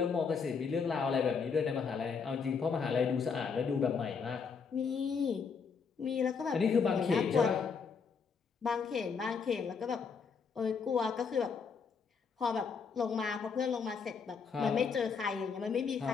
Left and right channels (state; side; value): quieter; right; 5.7 dB